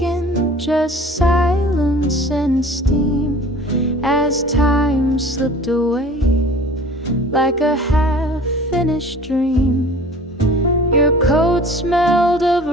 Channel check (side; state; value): both; normal; correlation 0.45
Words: just silence and steam, as time slipped away like a half-finished dream. Your coat smelled of